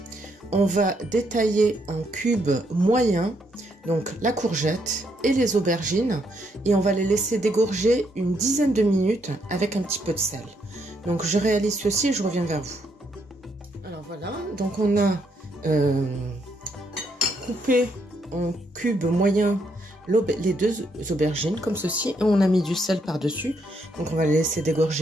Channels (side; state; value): both; normal; correlation 0.75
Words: on va détailler en cubes moyens donc la courgette et les aubergines et on va les laisser dégorger une dizaine de minutes avec un petit peu de sel. Donc je réalise ceci et je reviens vers vous. Alors voilà, donc on a coupé en cubes moyens les 2 aubergines comme ceci et on a mis du sel par dessus. Donc on va les laisser